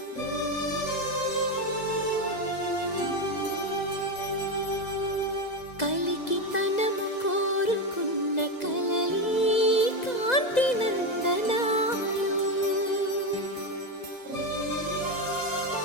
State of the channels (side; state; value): right; late; 2.0 ms